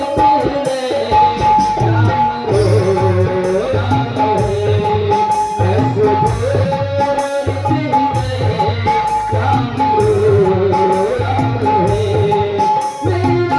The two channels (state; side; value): identical; both; correlation 1.00